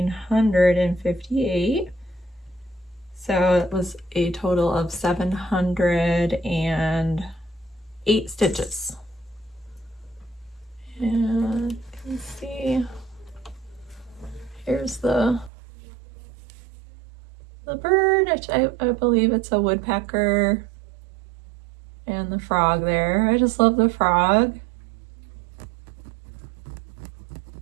So it was a total of 708 stitches. And you can see, here's the bird, which I believe it's a woodpecker, and the frog there. I just love the frog.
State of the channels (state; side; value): drops out; left; at 15.5 s